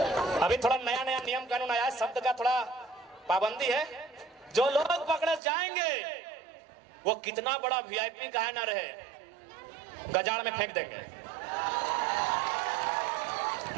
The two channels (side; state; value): left; drops out; at 5.4 s